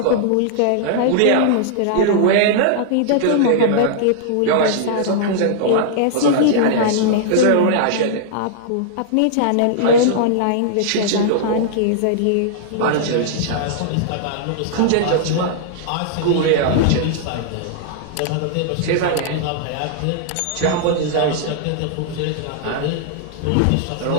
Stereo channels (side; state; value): both; different; correlation -0.01